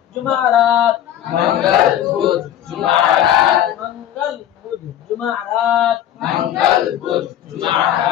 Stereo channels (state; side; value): quieter; right; 11.1 dB